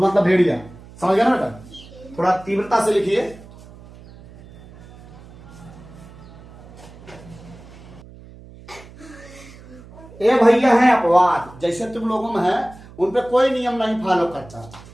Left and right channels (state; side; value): noise; right; hum, 20 dB below the sound